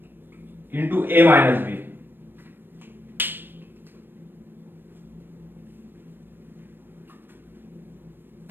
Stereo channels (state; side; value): late; left; 0.096 ms